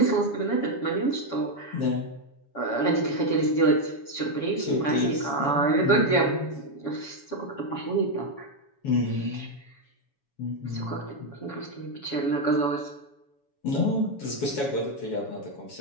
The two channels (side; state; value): right; late; 7.2 ms